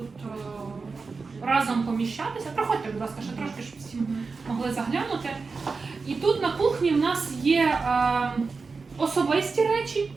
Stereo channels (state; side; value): quieter; left; 4.5 dB